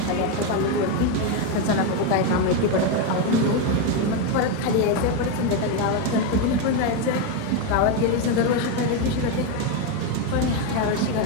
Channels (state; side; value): different; both; correlation 0.03